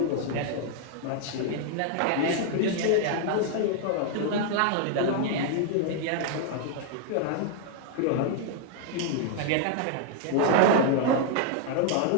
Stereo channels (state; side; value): different; both; correlation 0.00